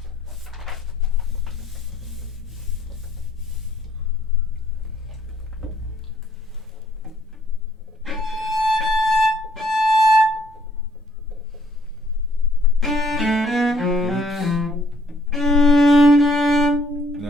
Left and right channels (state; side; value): normal; both; correlation 0.64